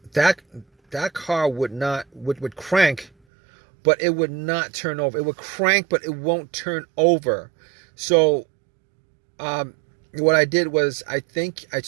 car would crank, but it would not turn over. It would crank, but it won't turn over. So what I did was, I think I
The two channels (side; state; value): left; drops out; at 3.1 s